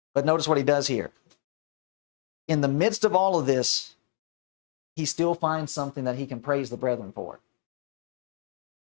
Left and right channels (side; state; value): right; silent; 59 dB below the other